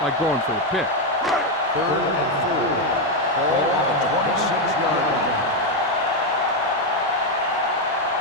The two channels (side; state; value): both; normal; correlation 0.04